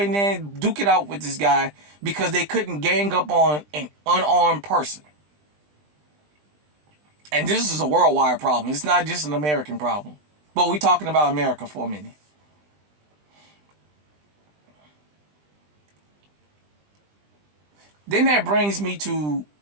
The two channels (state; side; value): late; left; 20 ms